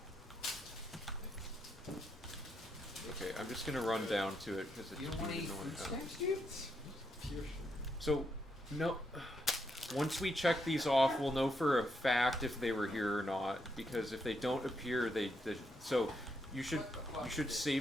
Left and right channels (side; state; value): both; normal; correlation 0.79